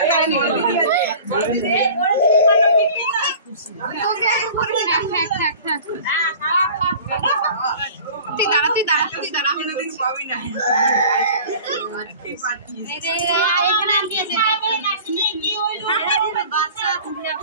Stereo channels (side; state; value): both; inverted; correlation -0.42